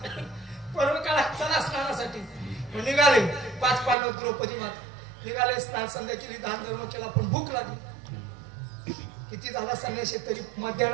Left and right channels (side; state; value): left; drops out; at 4.0 s